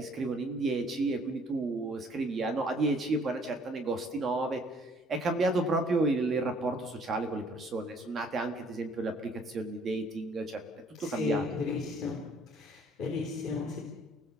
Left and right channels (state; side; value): normal; both; correlation 0.60